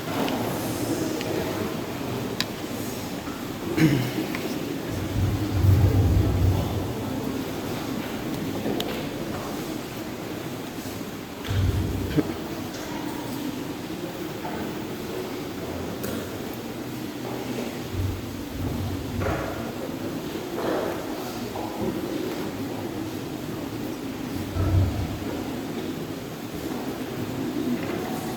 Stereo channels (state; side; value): identical; both; correlation 1.00